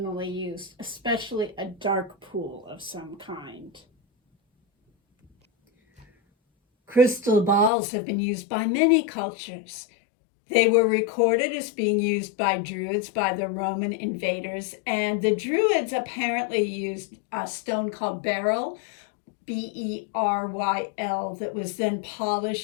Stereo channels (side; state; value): right; drops out; at 7.7 s